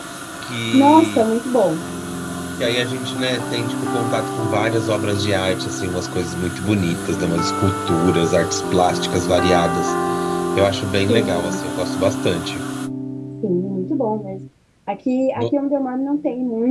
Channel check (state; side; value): identical; both; correlation 1.00